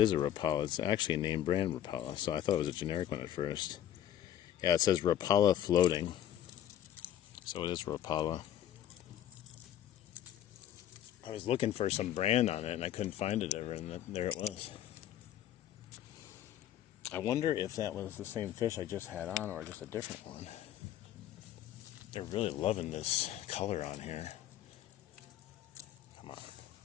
a Rapala. It's actually a name brand Rapala, so I thought it was a generic one at first. Yeah, it says Rapala floating. So it is Rapala. I was looking for some brand on it, and I couldn't find it ever, and there it was. I wonder if that was the same fish I just had on, or just a different one. They're really loving this color on here. Come on.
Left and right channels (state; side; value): quieter; right; 11.4 dB